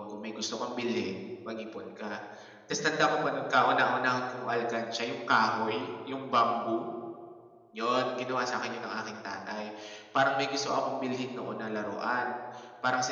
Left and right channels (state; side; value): identical; both; correlation 1.00